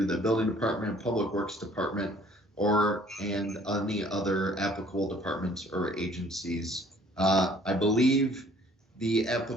the Building Department, Public Works Department, and any other applicable departments or agencies. I believe the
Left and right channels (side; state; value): both; normal; correlation 0.56